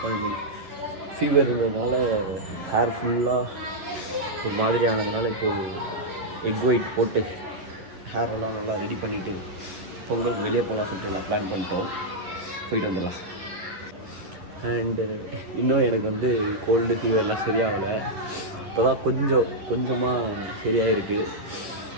ஃபீவர் இருந்ததுனால ஹேர் ஃபுல்லாக ஒரு மாதிரி ஆனதுனால இப்போது எக் ஒயிட் போட்டு ஹேர் எல்லாம் நல்லா ரெடி பண்ணிவிட்டு பொங்கலுக்கு வெளியே போகலாம் சொல்லிட்டு எல்லாம் பிளான் பண்ணிட்டோம். போயிட்டு வந்துடலாம். அண்டு இன்னும் எனக்கு வந்து கோல்டு ஃபீவர்லாம் சரியாகலை. இப்போ தான் கொஞ்சமாக சரியாக இருக்குது.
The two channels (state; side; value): late; left; 11 ms